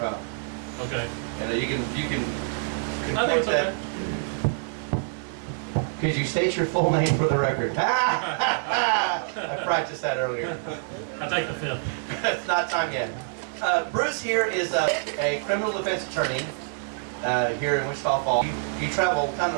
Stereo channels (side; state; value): left; silent; digital silence